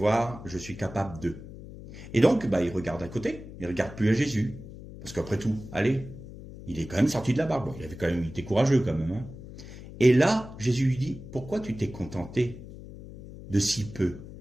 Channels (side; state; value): left; noise; hum, 14 dB below the sound